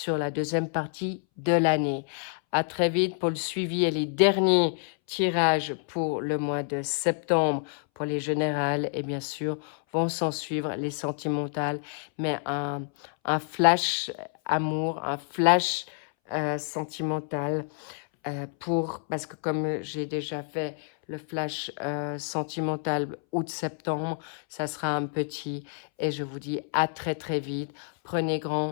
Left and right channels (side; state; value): right; silent; 59 dB below the other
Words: la deuxième partie de l'année. À très vite pour le suivi et les derniers tirages pour le mois de septembre pour les générales et bien sûr vont s'en suivre les sentimentales, mais un flash amour, un flash sentimental parce que comme j'ai déjà fait le flash sentimental août-septembre, ça sera un petit et je vous dis à très très vite. Prenez